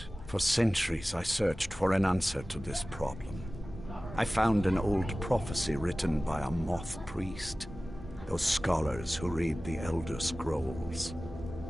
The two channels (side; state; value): both; normal; correlation 0.97